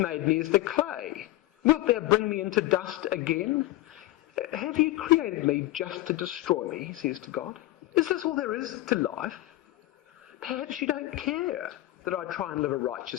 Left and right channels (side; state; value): right; quieter; 16.8 dB